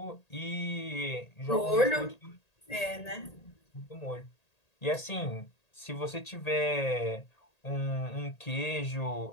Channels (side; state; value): right; late; 1.8 ms